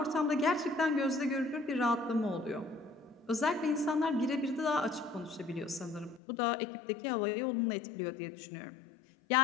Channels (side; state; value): right; drops out; at 6.2 s